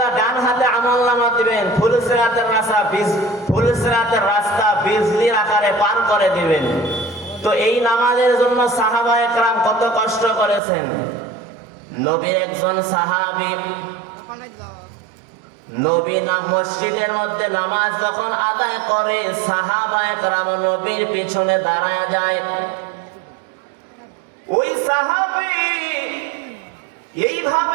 ডান হাতে আমলনামা দিবেন, ফুলসিরাতের রাস্তা বিজলির আকারে পার করে দিবেন। তো এই নামাজের জন্য সাহাবায়ে কেরাম কত কষ্ট করেছেন। নবীর একজন সাহাবী, নবী মসজিদের মধ্যে নামাজ যখন আদায় করে, সাহাবায়ে কেরাম নবীর পিছনে দাঁড়ায় যায়। ওই সাহাবী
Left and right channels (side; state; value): left; drops out; at 10.6 s